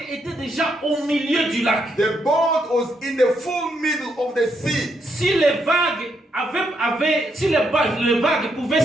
était déjà au milieu du lac. the boat was in the full middle of the sea. Si les vagues les vagues pouvaient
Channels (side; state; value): both; normal; correlation 0.78